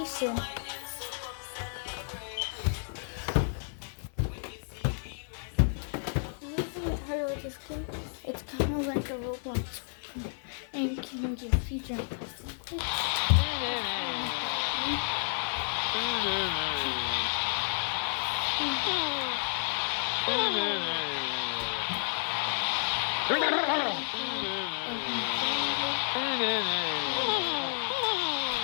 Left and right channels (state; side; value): silent; right; digital silence